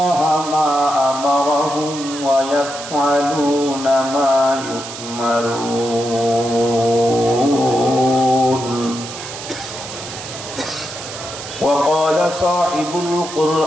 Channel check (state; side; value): noise; right; hiss, 11 dB below the sound